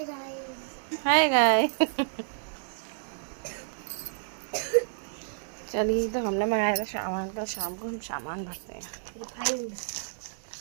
guys. Hi guy. चलिए, तो हमने मंगाया था सामान, तो शाम को हम सामान भरते हैं। रिफाइंड।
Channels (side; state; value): left; silent; 58 dB below the other